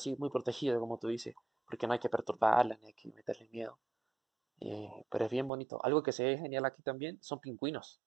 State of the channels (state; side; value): drops out; left; at 5.5 s